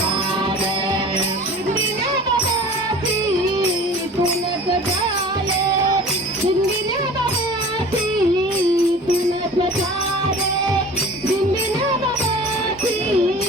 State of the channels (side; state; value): both; normal; correlation 0.41